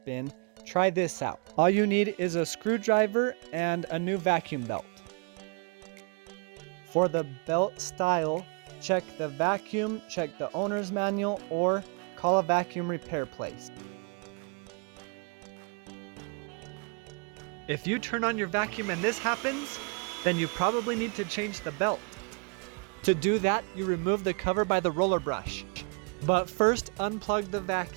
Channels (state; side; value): quieter; left; 34.6 dB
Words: try this out. All you need is a screwdriver and a new vacuum belt. For the belt style, check the vacuum, check the owner's manual, or call a vacuum repair place. If you turn on your vacuum and this happens, then you probably need to change the belt. To do that, you remove the cover by the roller brush. But first, unplug the